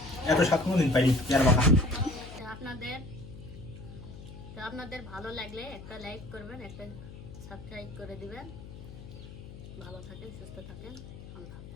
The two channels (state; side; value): noise; left; hum, 14 dB below the sound